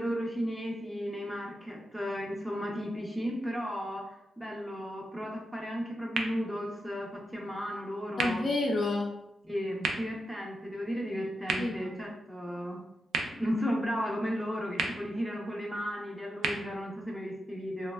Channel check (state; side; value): normal; both; correlation 0.86